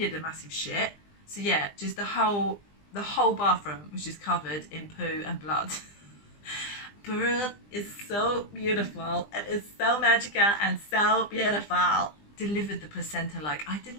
a massive shit. So yeah, just the whole bathroom was just covered in poo and blood. Birth is so beautiful. It is so magical and so beautiful. Delivered the placenta, like I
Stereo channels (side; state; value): right; late; 20 ms